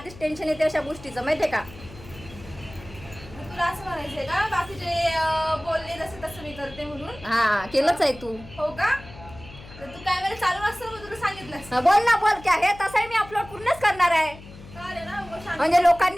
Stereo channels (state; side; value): noise; left; hum, 18 dB below the sound